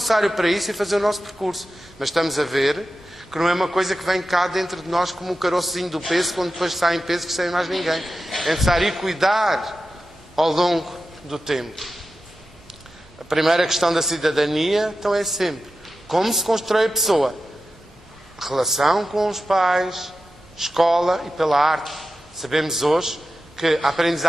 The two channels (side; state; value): both; normal; correlation 0.92